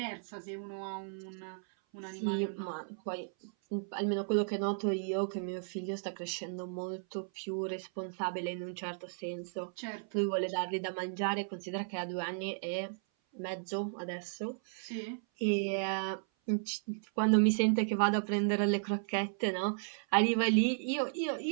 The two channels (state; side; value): silent; left; 55 dB below the other